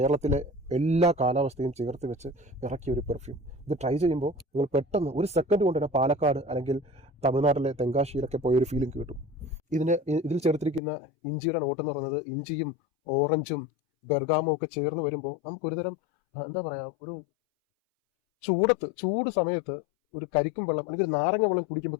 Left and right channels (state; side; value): drops out; right; at 10.8 s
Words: എല്ലാ കാലാവസ്ഥയും ചേർത്ത് വെച്ച് ഇറക്കിയ ഒരു പെർഫ്യൂം. ഇത് ട്രൈ ചെയ്യുമ്പോൾ നിങ്ങൾ പെട്ടെന്ന് ഒരു സെക്കൻഡ് കൊണ്ട് തന്നെ പാലക്കാട് അല്ലെങ്കിൽ തമിഴ്നാട്ടിലെ തെങ്കാശിയിലൊക്കെ പോയൊരു ഫീലിംഗ് കിട്ടും. ഇതിൽ ചേർത്തിരിക്കുന്ന ഇഞ്ചിയുടെ നോട്ട് എന്ന് പറയുന്നത് ഇഞ്ചിയും ഓറഞ്ചും ബെർഗാമോ ഒക്കെ ചേർന്ന് വരുമ്പോൾ നമുക്കൊരുതരം എന്താ പറയുക, ഒരു ചൂട് സമയത്ത് ഒരു കരിക്കും വെള്ളം അല്ലെങ്കിൽ നാരങ്ങ വെള്ളം കുടിക്കുമ്പോൾ